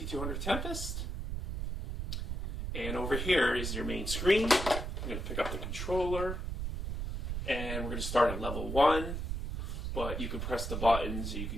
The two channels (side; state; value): right; noise; rumble, 3 dB below the sound